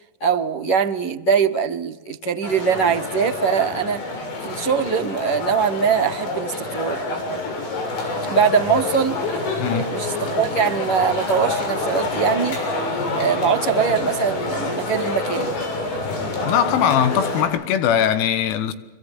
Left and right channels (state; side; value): late; right; 11 ms